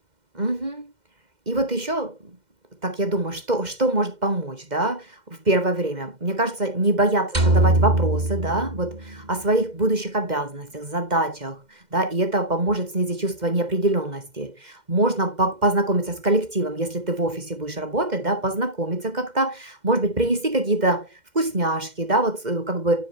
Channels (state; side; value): late; left; 2.1 ms